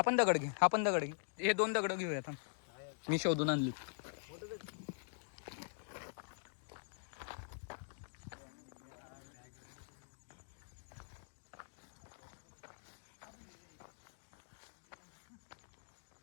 पण दगड घे. हे 2 दगड घेऊया आता. मी शोधून आणली.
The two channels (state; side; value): silent; right; digital silence